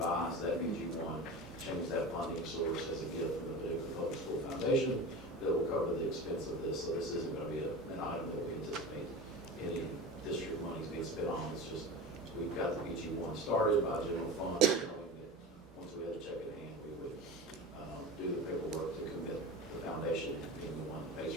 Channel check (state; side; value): normal; both; correlation 0.30